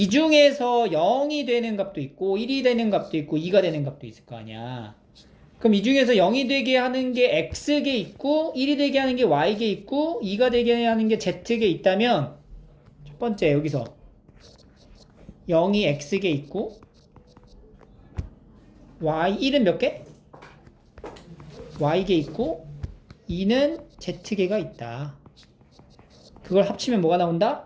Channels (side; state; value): both; identical; correlation 1.00